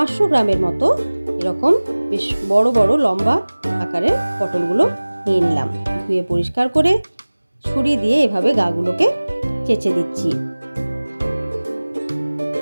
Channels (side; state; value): both; inverted; correlation -1.00